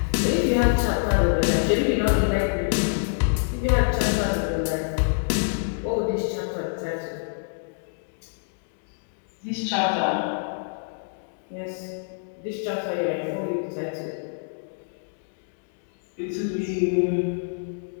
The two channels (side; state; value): right; silent; digital silence